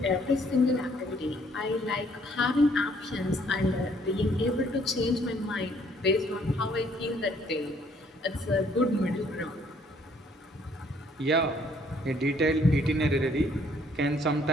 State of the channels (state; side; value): normal; both; correlation 0.64